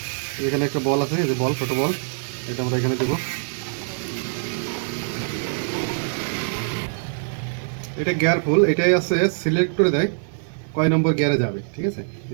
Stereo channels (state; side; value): silent; left; digital silence